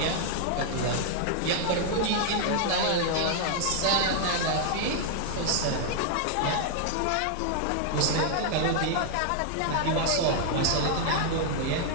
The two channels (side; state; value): both; different; correlation 0.00